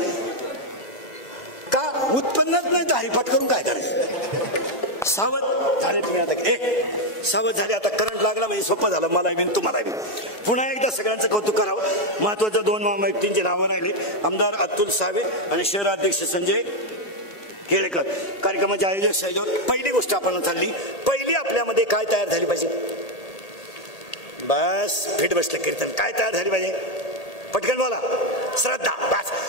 का उत्पन्नच नाही हरिपाठ करून काय करायचं। सावध झाले तुम्ही आता, सावध झाले आता। करंट लागला म्हणजे सोपं झालं मला बी तुम्हाला बी। पुन्हा एकदा सगळ्यांचं कौतुक करावं। महत्वाच्या 2 व्यक्तींची नावं राहिले, आमदार अतुल सावे आणि शहराध्यक्ष संजय केळेकर। कार्यक्रमाचे आयोजक सहयोग। पहिली गोष्ट आपण चालली, पहिली आपल्यामध्ये काय तयार झाली पाहिजे। बस फिट बसलं कीर्तन, काय तयार झाली पाहिजे पटकन बोला। श्रद्धा।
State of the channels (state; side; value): late; right; 1.8 ms